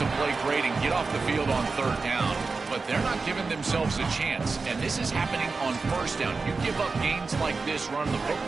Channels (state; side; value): quieter; left; 4.2 dB